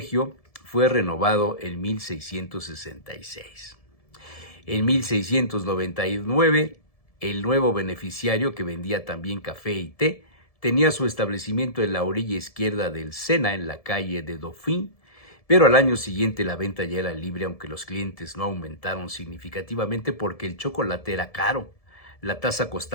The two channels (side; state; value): right; late; 1.7 ms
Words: fue renovado en 1666. En 1699, el nuevo beneficiario, que vendía también café y té, tenía su establecimiento en la orilla izquierda del Sena, en la calle de Dauphin, pero al año siguiente la venta ya era libre, aunque los clientes no aumentaron significativamente porque el chocolate era caro. La taza